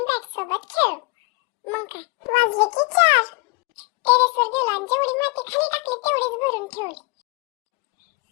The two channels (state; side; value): quieter; right; 28.0 dB